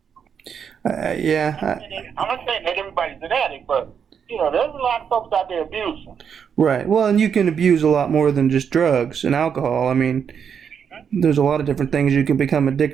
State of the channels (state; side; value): quieter; left; 7.3 dB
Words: Yeah. I'm not saying that everybody's an addict, but, you know, there's a lot of folks out there abusing. Right. Well, and you can abuse a lot more than just drugs and alcohol. I mean, there's a lot of different things you can become